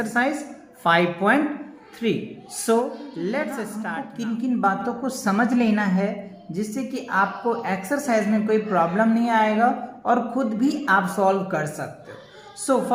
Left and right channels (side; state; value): both; identical; correlation 1.00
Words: 5.3। So let's start. किन किन बातों को समझ लेना है जिससे कि आपको एक्सरसाइज में कोई प्रॉब्लम नहीं आएगा और खुद भी आप सॉल्व कर सकते हो। सो